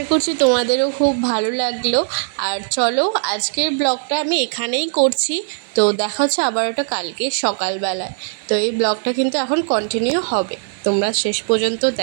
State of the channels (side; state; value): left; silent; 60 dB below the other